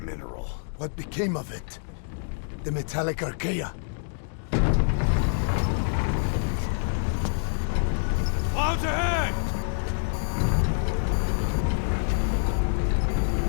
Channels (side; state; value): right; silent; digital silence